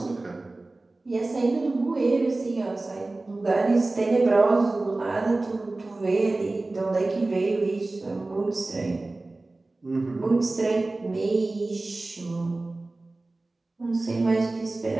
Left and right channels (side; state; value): left; quieter; 3.1 dB